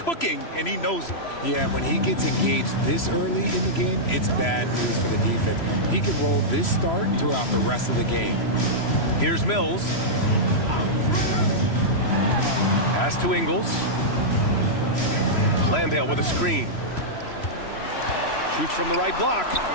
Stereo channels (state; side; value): late; right; 3.0 ms